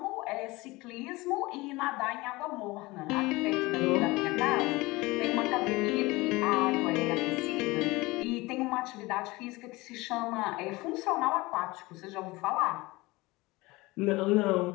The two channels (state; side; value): quieter; right; 21.8 dB